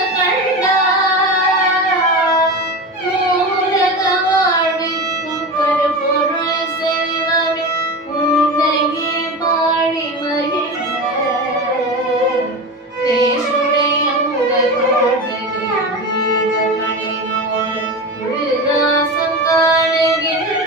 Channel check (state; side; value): normal; both; correlation 0.25